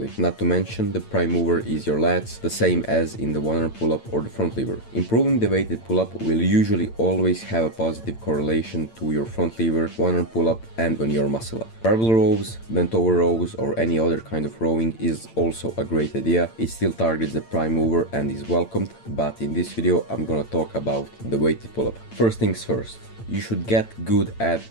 Not to mention, the prime mover is your lats, the same as in the one-arm pull-up or the front lever. Improving the weighted pull-up will usually always have a positive correlation to your front lever, one-arm pull-up, and on your muscle up. Barbell rows, bent over rows, or any other kind of rowing is also a great idea. It still targets the prime mover and is welcomed, but in this video I'm gonna talk about the weighted pull-up. First things first, you should get good at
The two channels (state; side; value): late; right; 8.9 ms